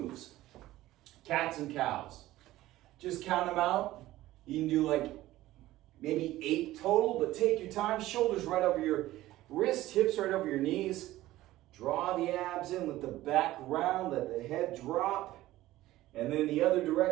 Cats and cows. Just count them out. You can do like maybe 8 total, but take your time. Shoulders right over your wrist, hips right over your knees. Draw the abs in, let the back round, let the head drop. And then the other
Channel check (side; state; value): left; quieter; 16.0 dB